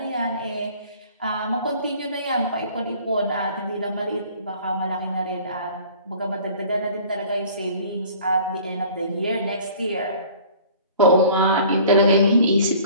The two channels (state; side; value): inverted; both; correlation -0.49